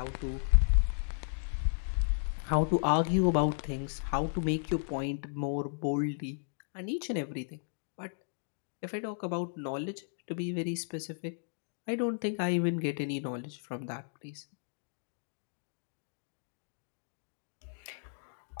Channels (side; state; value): right; silent; digital silence